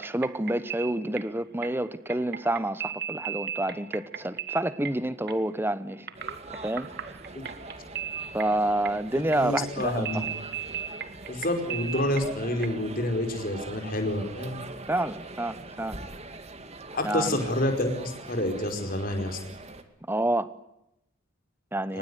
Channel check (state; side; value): normal; both; correlation 0.58